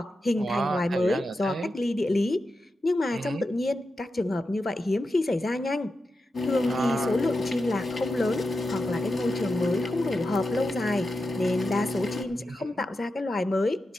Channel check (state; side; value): normal; both; correlation 0.90